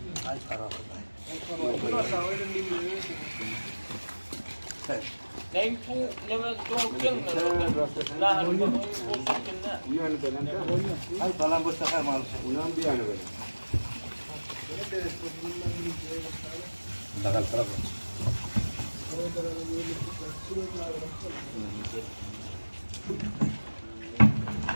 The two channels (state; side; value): inverted; both; correlation -1.00